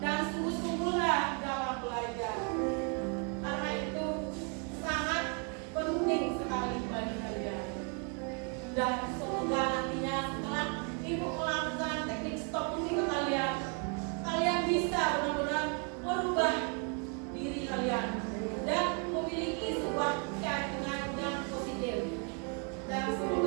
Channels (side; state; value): left; quieter; 38.2 dB